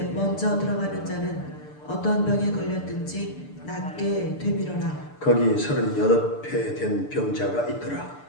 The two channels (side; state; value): right; late; 6.8 ms